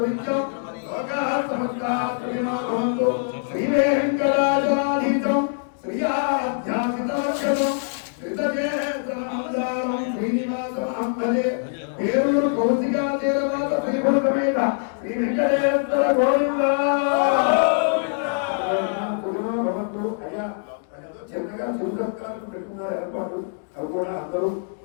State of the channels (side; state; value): right; silent; digital silence